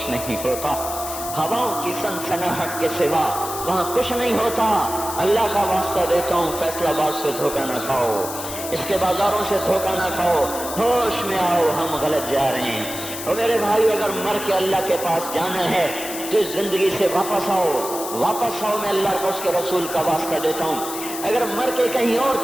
نہیں ہوتا، ہواؤں کی سنسناہٹ کے سوا وہاں کچھ نہیں ہوتا۔ اللہ کا واسطہ دیتا ہوں فیصل آباد سے دھوکہ نہ کھاؤ، اس کے بازاروں سے دھوکہ نہ کھاؤ، ہوش میں آؤ، ہم غلط جا رہے ہیں۔ اور میرے بھائی اگر مر کے اللہ کے پاس جانا ہے تو اس زندگی سے واپس آؤ، واپس آؤ، میں اللہ کو اس کے رسول کا واسطہ دیتا ہوں۔ اگر مر کے کہیں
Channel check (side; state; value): left; noise; hiss, 8 dB below the sound